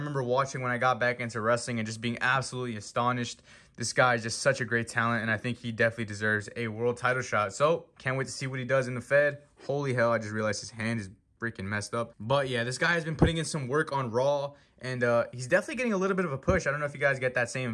watching when I got back into wrestling and just being absolutely astonished. This guy is just such a great talent, and I think he definitely deserves a world title shot. So, can't wait to see what he does in the Fed. Holy hell, I just realized his hand is freaking messed up. But yeah, this guy has been putting in some work on Raw, and he's definitely getting a little bit of a push. I don't know if you guys get that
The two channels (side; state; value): both; identical; correlation 1.00